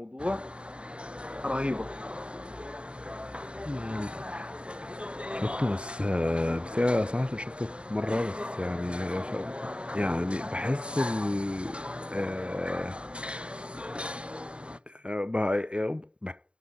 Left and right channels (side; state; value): left; late; 0.055 ms